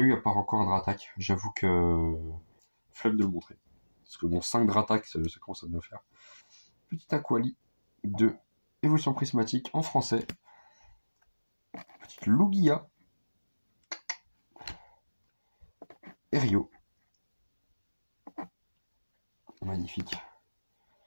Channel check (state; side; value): inverted; both; correlation -1.00